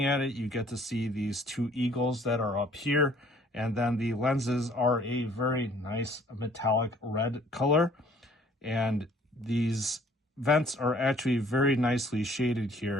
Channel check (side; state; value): both; normal; correlation 0.57